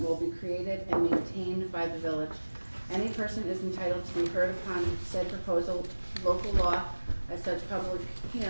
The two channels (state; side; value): inverted; both; correlation -1.00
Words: will be created and maintained by the village. Any person is entitled to be heard upon said proposal local law at such public